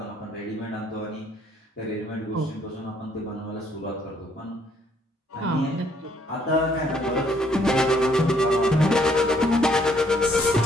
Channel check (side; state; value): both; normal; correlation 0.67